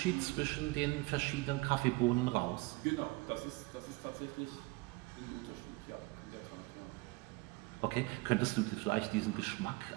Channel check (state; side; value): quieter; left; 24.0 dB